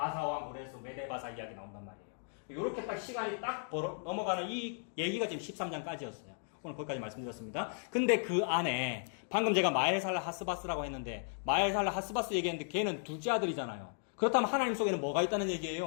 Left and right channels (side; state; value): right; silent; 54 dB below the other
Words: 고레스 메데바사 이야기 나온단 말이에요. 이렇게 딱 시간이 딱 넘어가는 이 얘기가 지금 13장까지였어요. 오늘 거기까지 말씀드렸습니다. 근데 그 안에 방금 제가 마엘살라 하스바스라고 했는데 마엘살라 하스바스 얘기했는데 걔는 둘째 아들이잖아요. 그렇다면 하나님 속에는 뭐가 있다는